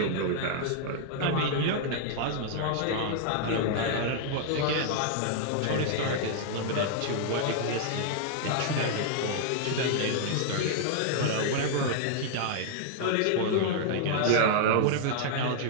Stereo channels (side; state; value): both; different; correlation -0.01